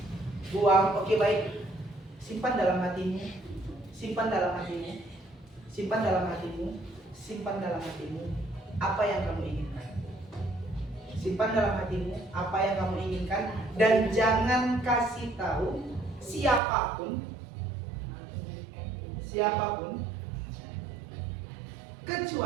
Buang. Oke, baik. Simpan dalam hatimu. Simpan dalam hatimu. Simpan dalam hatimu. Simpan dalam hatimu apa yang kamu inginkan. Simpan dalam hatimu apa yang kamu inginkan dan jangan kasih tahu siapapun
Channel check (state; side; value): drops out; left; at 16.6 s